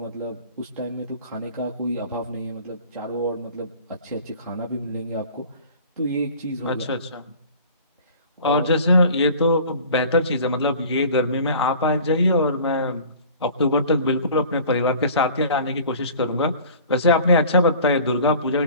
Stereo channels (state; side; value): inverted; both; correlation -0.45